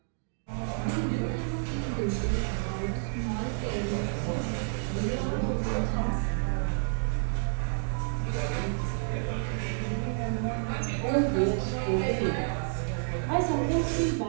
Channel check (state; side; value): silent; left; digital silence